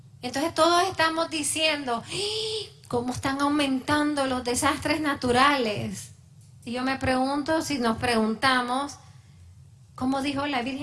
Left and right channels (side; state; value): both; identical; correlation 1.00